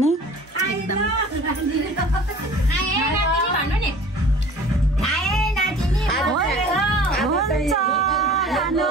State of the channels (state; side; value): normal; both; correlation 0.45